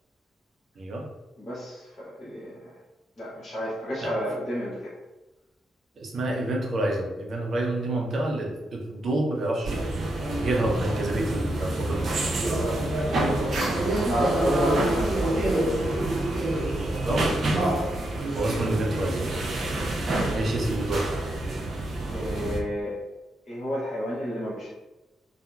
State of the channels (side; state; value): both; normal; correlation 0.82